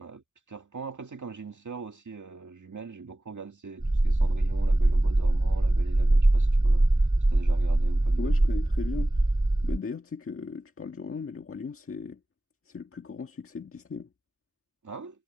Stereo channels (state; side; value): normal; both; correlation 0.97